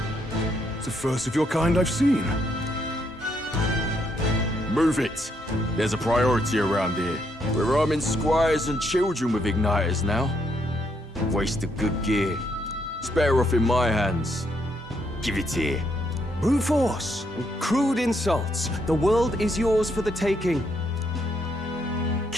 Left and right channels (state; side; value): normal; both; correlation 0.75